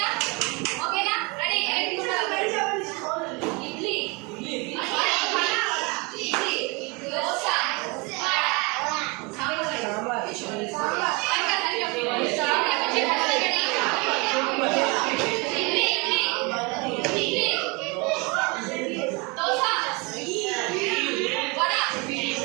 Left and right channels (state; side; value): quieter; left; 28.5 dB